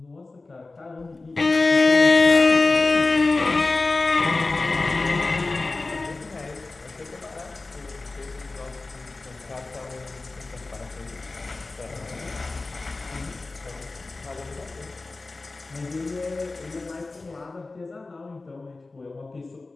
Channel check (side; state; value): right; quieter; 3.4 dB